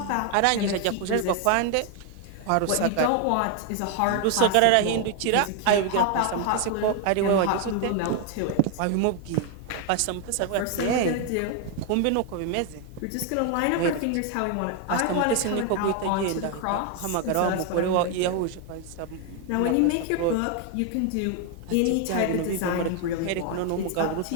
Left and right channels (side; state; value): both; different; correlation 0.01